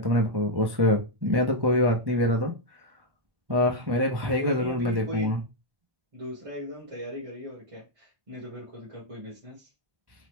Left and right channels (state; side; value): late; left; 1.1 ms